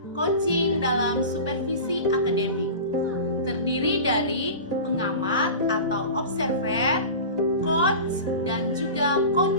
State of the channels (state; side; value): inverted; both; correlation -0.33